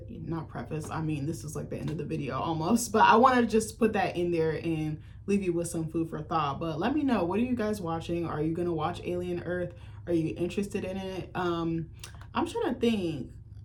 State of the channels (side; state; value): both; identical; correlation 1.00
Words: not preface, I mean, this is like the end of the video almost, but I want to just put that in there and leave you with some food for thought. But let me know, what are you guys watching? Are you gonna watch Alien Earth? Are you interested in it? I'm trying to think,